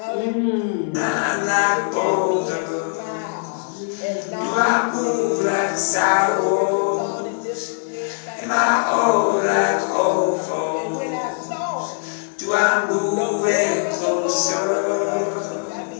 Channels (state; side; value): silent; right; 65 dB below the other